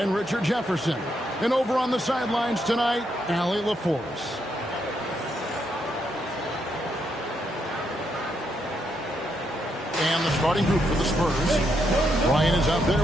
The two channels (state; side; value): normal; both; correlation 0.78